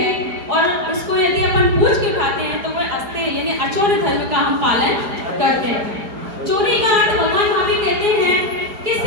और उसको यदि अपन पूछ के उठाते हैं तो वह अस्ते यानी अचौर्य धर्म का हम पालन करते हैं। चोरी का अर्थ भगवान महावीर कहते हैं कि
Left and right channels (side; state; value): left; late; 4.8 ms